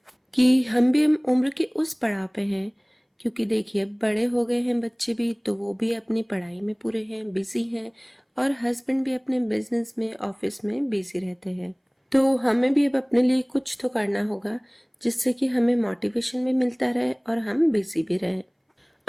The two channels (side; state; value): both; identical; correlation 1.00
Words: कि हम भी हम उम्र के उस पड़ाव पे हैं। क्योंकि देखिए, बड़े हो गए हैं बच्चे भी, तो वो भी अपनी पढ़ाई में पूरे हैं, बिजी हैं, और हस्बैंड भी अपने बिजनेस में, ऑफिस में बिजी रहते हैं। तो हमें भी अब अपने लिए कुछ तो करना होगा, जिससे कि हमें मोटिवेशन भी मिलता रहे और हम बिजी भी रहें।